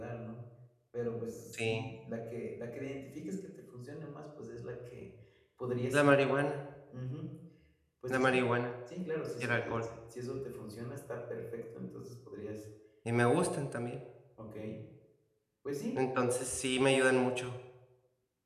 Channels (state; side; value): identical; both; correlation 1.00